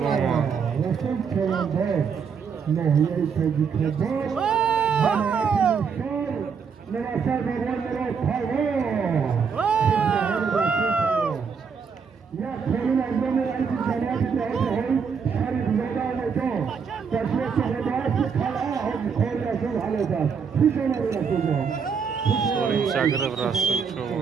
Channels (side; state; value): left; quieter; 6.2 dB